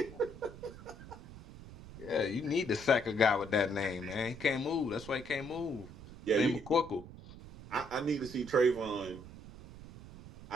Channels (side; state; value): right; noise; rumble, 15 dB below the sound